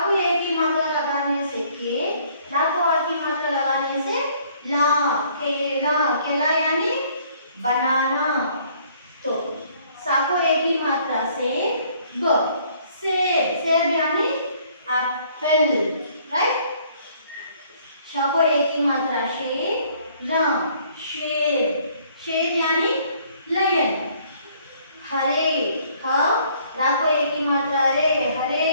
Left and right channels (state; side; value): inverted; both; correlation -0.61